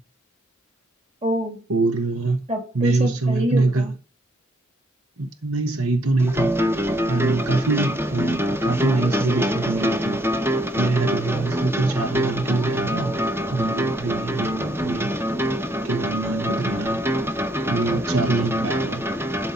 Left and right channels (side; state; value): both; normal; correlation 0.70